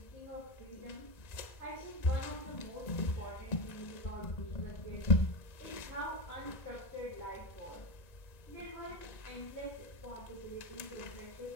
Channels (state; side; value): late; right; 1.8 ms